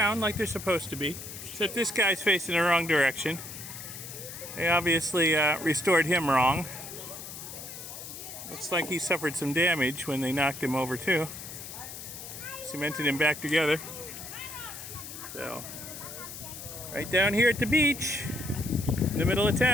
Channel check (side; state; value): left; noise; hiss, 11 dB below the sound